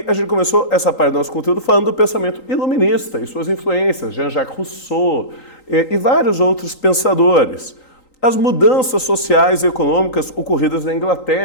a gente começou essa parte do nosso conteúdo falando do pensamento iluminista e suas influências, Jean-Jacques Rousseau e vários outros pensadores. As mudanças sociais e econômicas ocorridas na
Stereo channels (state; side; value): late; right; 3.9 ms